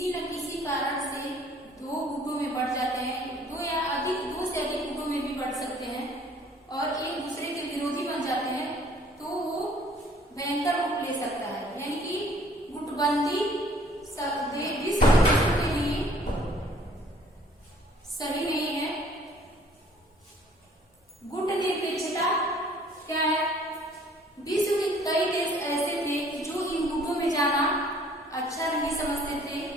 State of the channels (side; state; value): both; normal; correlation 0.57